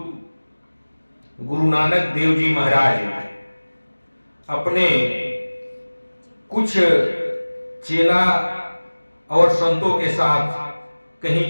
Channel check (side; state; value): both; inverted; correlation -1.00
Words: गुरु नानक देव जी महाराज अपने कुछ चेला और संतों के साथ कहीं